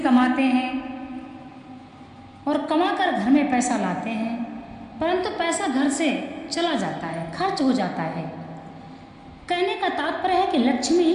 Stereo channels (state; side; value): identical; both; correlation 1.00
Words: हैं और कमाकर घर में पैसा लाते हैं, परंतु पैसा घर से चला जाता है, खर्च हो जाता है। कहने का तात्पर्य है कि लक्ष्मी